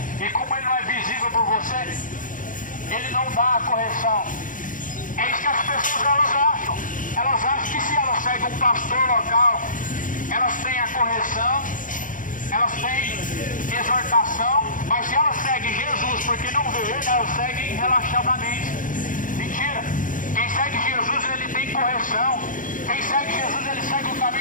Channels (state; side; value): late; right; 0.38 ms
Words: e como Ele não é visível por você, Ele não dá a correção? É isso que as pessoas elas acham. Elas acham que se elas seguem um pastor local, elas têm a correção, elas têm exortação, mas se elas seguem Jesus porque não vê Ele, elas seguem relaxadamente. Mentira. Quem segue Jesus, ele tem correção. Quem segue Jesus, ele segue o